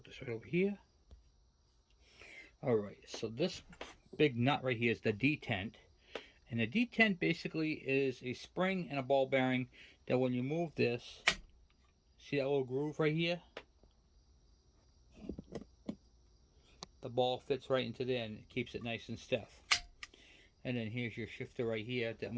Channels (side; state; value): both; identical; correlation 1.00